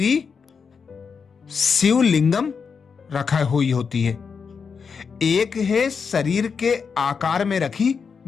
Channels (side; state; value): right; quieter; 5.8 dB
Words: शिवलिंगम रखा हुई होती है, एक है शरीर के आकार में रखी